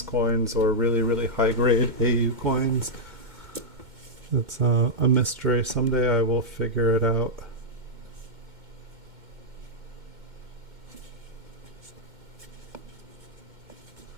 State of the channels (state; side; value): late; left; 2.2 ms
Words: coins or really high grade AU coins. It's a mystery. Someday I will figure it out.